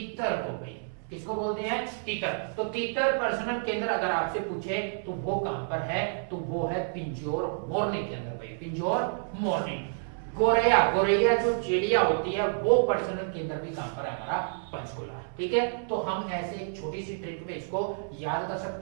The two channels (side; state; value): left; silent; 58 dB below the other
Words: को भाई। किसको बोलते हैं? तितर। तो तितर प्रजनन केंद्र अगर आपसे पूछे तो वो कहां पर है? तो वो है पिंजौर मोरनी के अंदर भाई, पिंजौर मोरनी। गोरैया, गोरैया जो चिड़िया होती है, वो प्रजनन केंद्र भी कहां पर है? हमारा पंचकुला, ठीक है। तो हम ऐसे एक छोटी सी ट्रिक में इसको याद कर